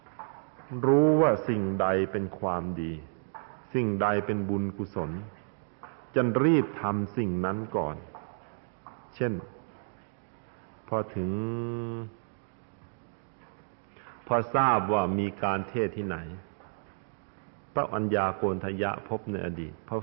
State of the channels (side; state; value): left; silent; digital silence